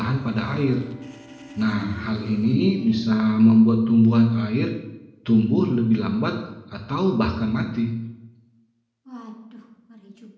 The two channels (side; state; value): both; identical; correlation 1.00